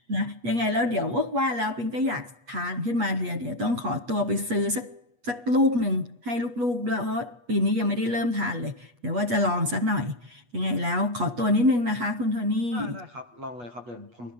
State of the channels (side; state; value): left; late; 8.3 ms